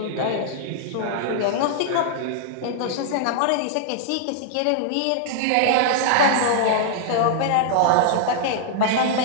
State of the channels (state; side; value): different; both; correlation -0.01